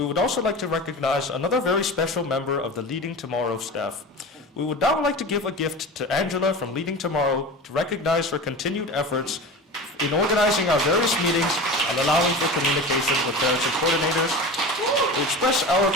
would also like to recognize another very special member of the Leading Tomorrow staff. We would now like to give a gift to Angela from Leading Tomorrow to recognize her continued efforts in organizing our various meetings and allowing for communication with parents and coordinators. We express our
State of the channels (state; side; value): normal; both; correlation 0.32